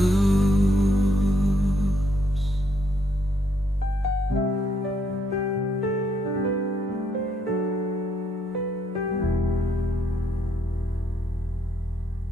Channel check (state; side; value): normal; both; correlation 0.73